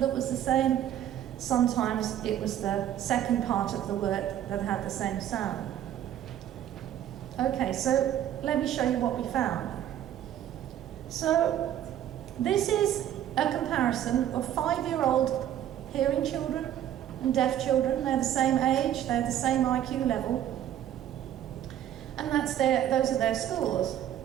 the same. Sometimes it was the second part of the word that had the same sound. Okay, so let me show you what we found. So this is a comparison of 5-year-old hearing children and deaf children. They're the same age, they're the same IQ level, and those are their scores.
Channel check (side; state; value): left; quieter; 11.2 dB